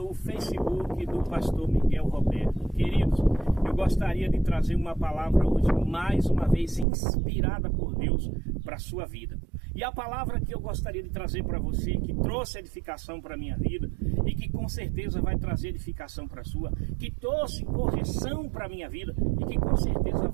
Facebook do pastor Miguel Roberto. Queridos, eu gostaria de trazer uma palavra hoje, mais uma vez, inspirada por Deus para a sua vida. E a palavra que eu gostaria de trazer para você, que trouxe edificação para a minha vida e que com certeza vai trazer edificação para a sua, que trouxe correção para a minha vida e que com certeza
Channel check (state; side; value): drops out; left; at 6.9 s